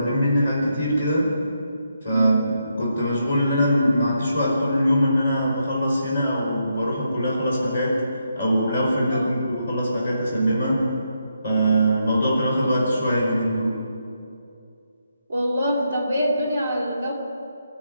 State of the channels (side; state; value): both; inverted; correlation -0.81